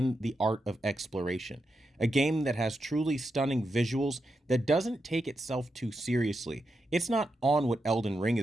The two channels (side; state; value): both; normal; correlation 0.86